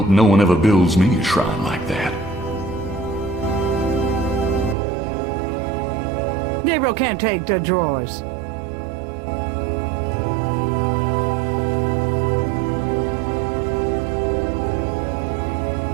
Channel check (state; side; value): drops out; left; at 4.8 s